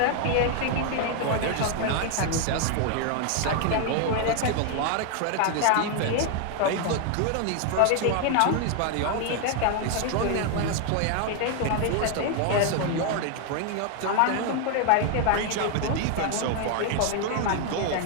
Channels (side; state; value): both; different; correlation 0.00